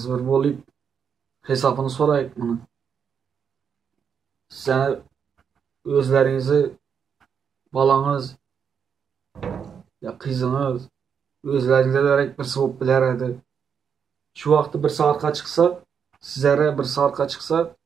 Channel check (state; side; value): quieter; left; 7.1 dB